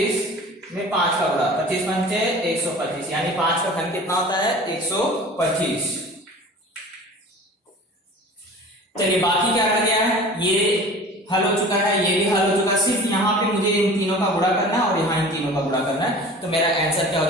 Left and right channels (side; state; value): both; normal; correlation 0.41